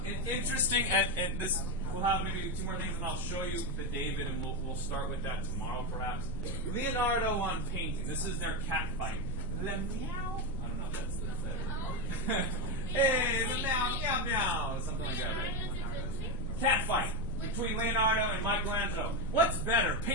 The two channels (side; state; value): left; noise; rumble, 5 dB below the sound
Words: Interesting, and this, we'll have maybe two more things, and I'll show you the David, and we'll start with that tomorrow, perhaps. Leonardo on painting. This is their cat fight. Le meow. I don't know if that's the hey, the meow, meow, meow. Something like that, right? Cat fight between Leonardo and Michelangelo. What's better,